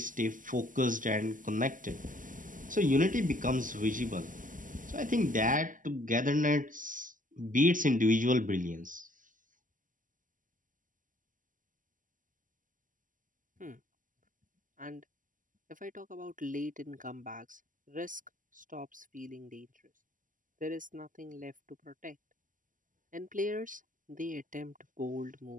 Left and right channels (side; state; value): left; late; 0.38 ms